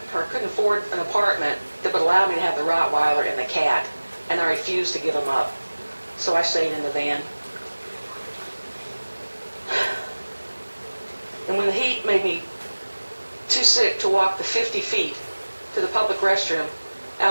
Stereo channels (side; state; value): both; inverted; correlation -1.00